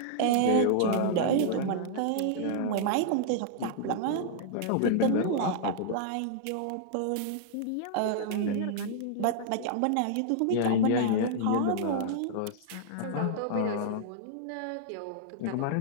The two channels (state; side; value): different; both; correlation -0.01